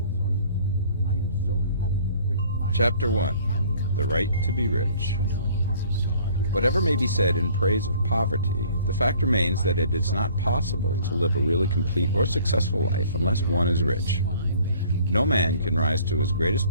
Chapter 1. The Right to be Rich. Whatever may be said in praise of poverty, the fact remains that it is not possible to live a really complete or successful life unless one is rich. No man can rise to his greatest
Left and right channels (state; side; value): inverted; both; correlation -0.54